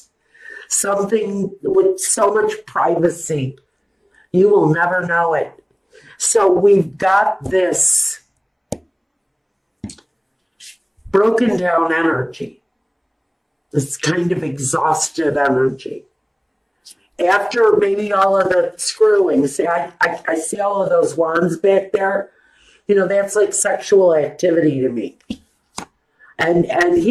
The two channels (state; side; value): identical; both; correlation 1.00